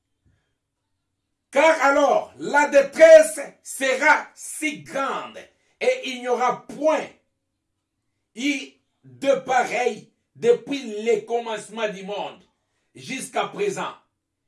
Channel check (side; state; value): both; identical; correlation 1.00